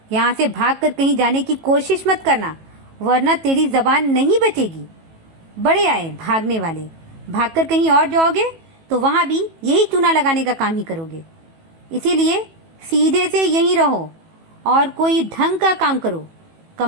यहाँ से भागकर कहीं जाने की कोशिश मत करना, वरना तेरी जबान नहीं बचेगी। बड़े आए भागने वाले, भागकर कहीं और जाओगे तो वहां भी यही चूना लगाने का काम ही करोगे। इसीलिए सीधे से यहीं रहो और कोई ढंग का काम करो।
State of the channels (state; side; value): late; left; 18 ms